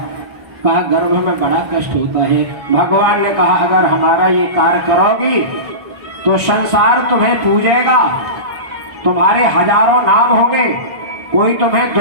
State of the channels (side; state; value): left; late; 1.6 ms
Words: कहा गर्भ में बड़ा कष्ट होता है। भगवान ने कहा अगर हमारा ये कार्य करोगी तो संसार तुम्हें पूजेगा, तुम्हारे हजारों नाम होंगे, कोई तुम्हें